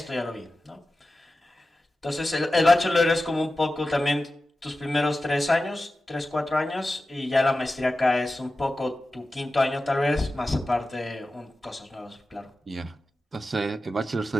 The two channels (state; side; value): normal; both; correlation 0.94